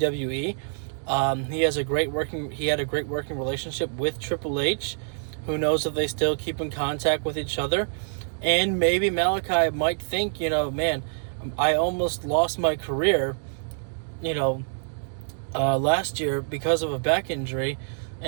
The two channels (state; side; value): silent; left; digital silence